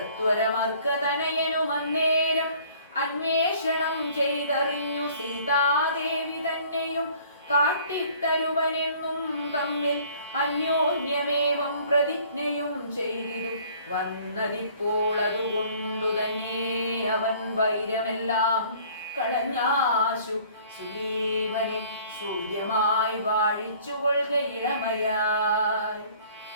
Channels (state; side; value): inverted; both; correlation -0.54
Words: അന്വേഷണം ചെയ്തറിഞ്ഞു സീതാദേവി തന്നെയും കാട്ടിത്തരുവനെന്നും തമ്മിൽ അന്യോന്യമേവം പ്രതിജ്ഞയും ചെയ്തിരു വന്നതിപ്പോൾ അതുകൊണ്ടു തന്നെ അവൻ വൈരമെല്ലാം കളഞ്ഞാശു സുഗ്രീവനെ സൂര്യമായി വാഴിച്ചുകൊള്ളുക ഇളമയായി.